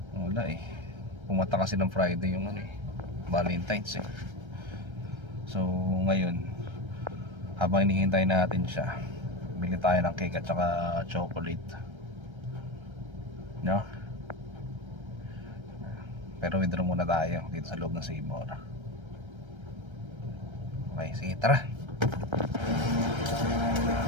Wala eh. Pumata kasi ng Friday yung Valentine's eh. So ngayon, habang hinihintay natin siya, bili tayo ng cake at saka chocolate, no? Pero withdraw muna tayo dito sa loob ng Save More. Okay, sige, tara.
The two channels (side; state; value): left; late; 1.3 ms